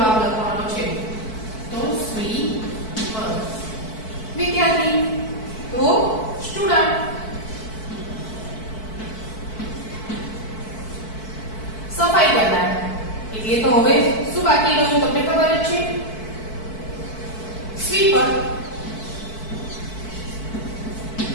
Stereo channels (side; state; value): right; late; 4.6 ms